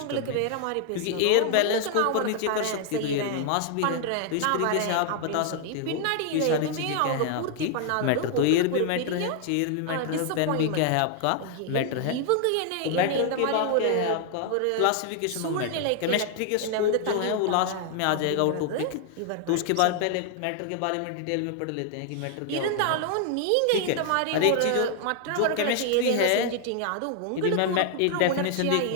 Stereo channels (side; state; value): both; different; correlation 0.00